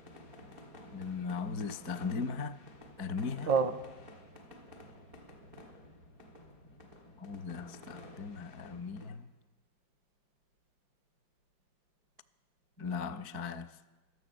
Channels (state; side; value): late; left; 4.6 ms